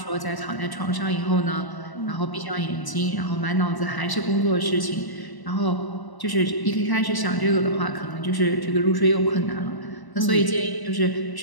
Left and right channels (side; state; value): right; late; 1.0 ms